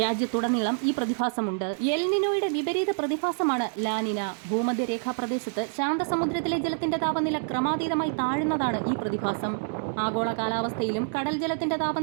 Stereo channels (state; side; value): silent; left; digital silence